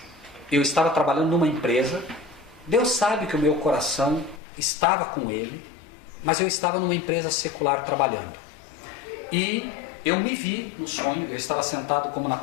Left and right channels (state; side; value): drops out; right; at 4.4 s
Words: eu estava trabalhando numa empresa, Deus sabe que o meu coração estava com Ele, mas eu estava numa empresa secular trabalhando. E eu me vi no sonho, eu estava sentado como na